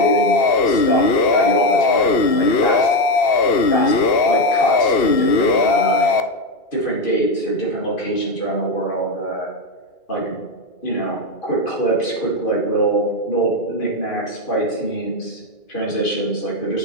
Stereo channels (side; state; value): right; late; 2.7 ms